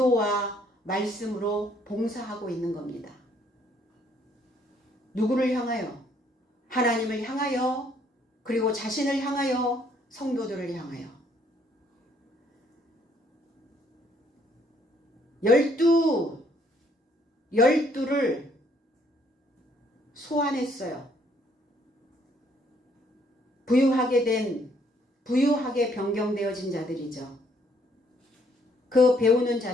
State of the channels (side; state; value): both; normal; correlation 0.66